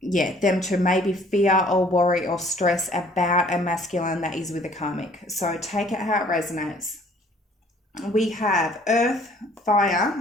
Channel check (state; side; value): normal; both; correlation 0.57